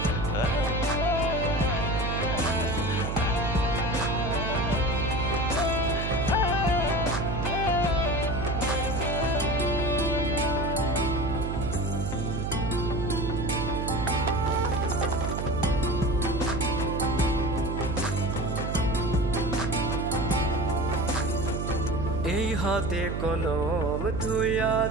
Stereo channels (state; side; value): noise; right; hum, 3 dB below the sound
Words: এই হাতে কলম ধুইয়া